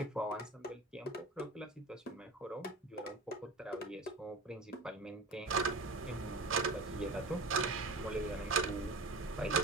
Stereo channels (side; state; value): left; quieter; 3.1 dB